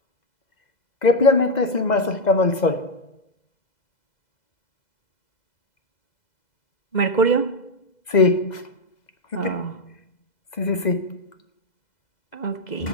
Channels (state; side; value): late; right; 2.0 ms